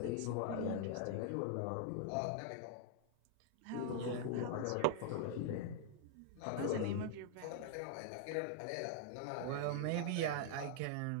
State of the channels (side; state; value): both; different; correlation 0.00